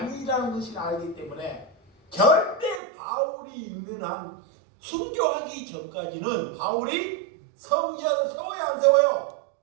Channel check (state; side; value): drops out; left; at 2.8 s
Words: 것을 알기 때문에 절대 바울이 있는 한 순교하기 전까지는 바울이 성전을 세워야 안 세워요?